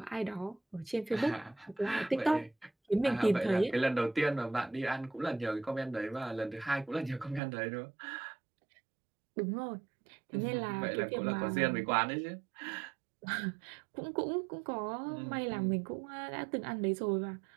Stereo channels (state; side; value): drops out; left; at 7.4 s